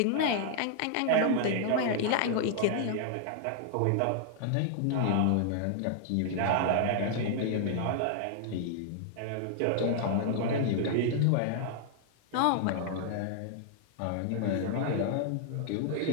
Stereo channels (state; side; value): different; both; correlation 0.00